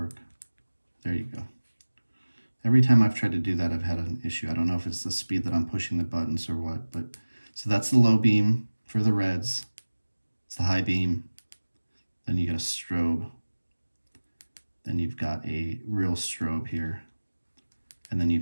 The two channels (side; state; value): both; inverted; correlation -1.00